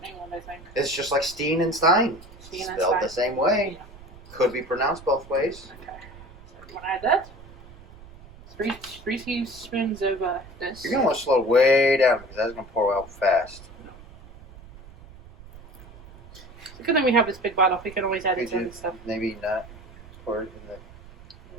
England, I think. It's just like Steen and Stein. Steen and Spelled Stein. the same way. Yeah. Could be pronounced both ways. Okay. So you want to add that? Three teaspoons of this. You're going to want to slow way down because that's going to pour out fast. It's a good thing we have this big bottle. We can always add it to and stuff. Maybe not pour it in the...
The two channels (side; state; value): right; noise; rumble, 19 dB below the sound